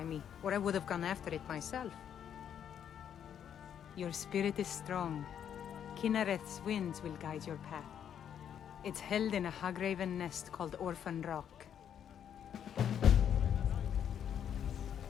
me, or I would have gone after it myself. Your spirit is strong. Kinareth's winds will guide your path. It's held in a Hagraven nest called Orphan Rock.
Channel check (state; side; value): quieter; right; 9.0 dB